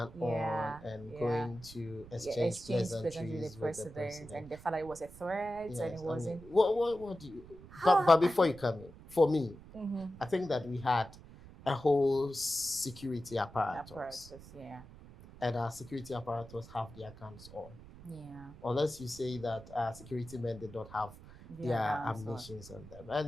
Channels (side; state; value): right; noise; rumble, 18 dB below the sound